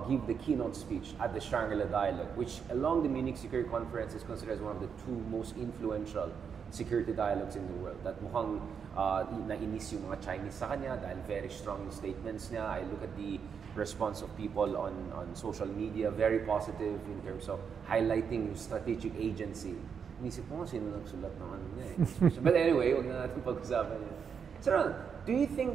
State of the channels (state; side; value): quieter; left; 6.8 dB